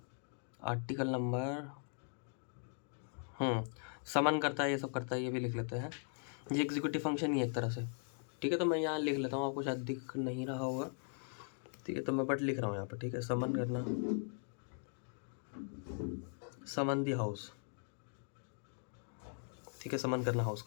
आर्टिकल नंबर समन करता है, ये सब करता है, ये भी लिख लेते हैं. ये एग्जीक्यूटिव फंक्शन ही है एक तरह से. ठीक है, तो मैं यहाँ लिख लेता हूँ, आपको शायद दिख नहीं रहा होगा. ठीक है, तो मैं बट लिख रहा हूँ यहाँ पर. ठीक है, समन करना, समन दी हाउस. ठीक है, समन करना हाउस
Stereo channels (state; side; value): silent; right; 51 dB below the other